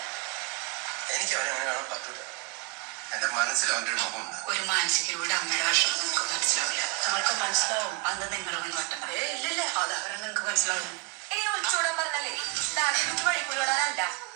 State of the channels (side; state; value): left; quieter; 28.9 dB